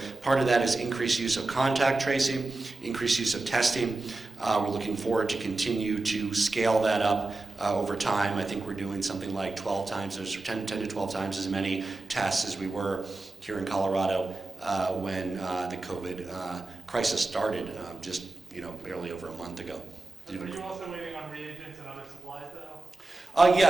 part of that is increased use of contact tracing, increased use of testing. We're looking forward to continue to scale that up over time. I think we're doing something like 12 times, or 10 to 12 times as many tests as we were here in Colorado when the COVID crisis started just barely over a month ago. Are you also waiting on reagents and other supplies, though?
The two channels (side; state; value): left; quieter; 3.2 dB